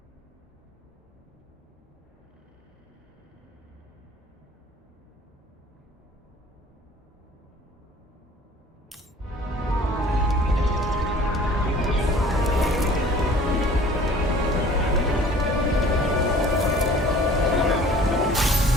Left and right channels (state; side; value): normal; both; correlation 0.49